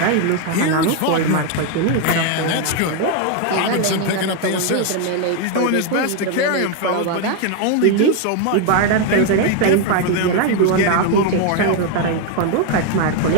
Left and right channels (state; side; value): different; both; correlation 0.01